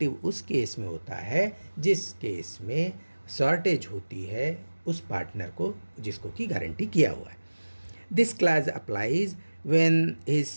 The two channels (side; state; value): both; inverted; correlation -1.00